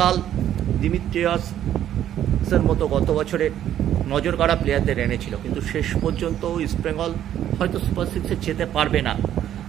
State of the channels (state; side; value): quieter; left; 11.1 dB